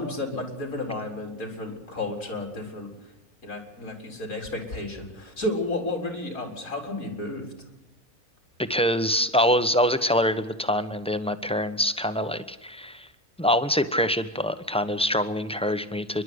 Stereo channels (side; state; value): both; normal; correlation 0.23